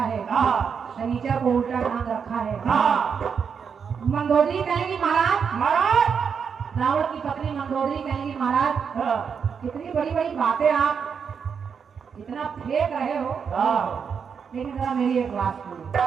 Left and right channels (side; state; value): left; quieter; 6.6 dB